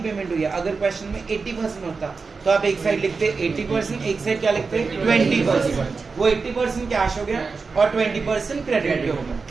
हुई है। अगर क्वेश्चन में 80% होता तो आप एक साइड लिखते 80%, एक साइड क्या लिखते 20%। वो 80% कैश हो गया और 20% क्रेडिट पे हो गया।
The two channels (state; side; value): quieter; left; 4.6 dB